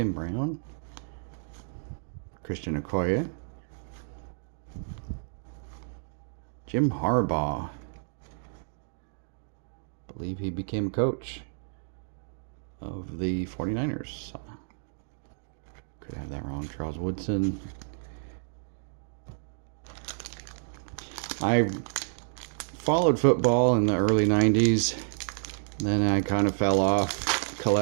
Brown. Christian Okoye. Jim Harbaugh. I believe he became a coach of the 49ers. Could have that wrong. Charles Woodson. I followed football in the early 90s. Then I kind of fell off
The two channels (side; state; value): left; silent; digital silence